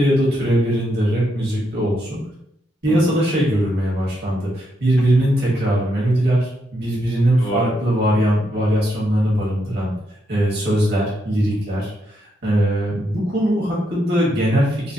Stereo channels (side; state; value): both; normal; correlation 0.79